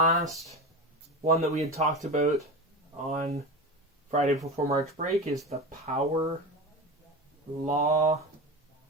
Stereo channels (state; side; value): normal; both; correlation 0.24